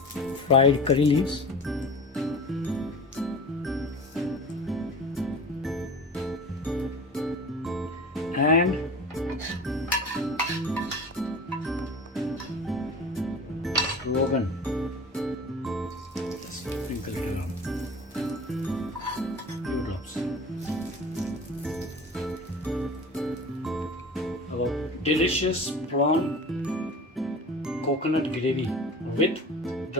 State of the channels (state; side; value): normal; both; correlation 0.37